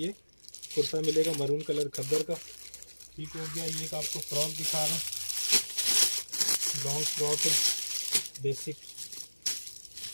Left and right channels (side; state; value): both; inverted; correlation -1.00